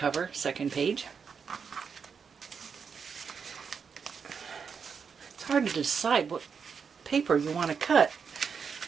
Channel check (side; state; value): left; quieter; 6.2 dB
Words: second page. It's hard to decide what paper you want to cut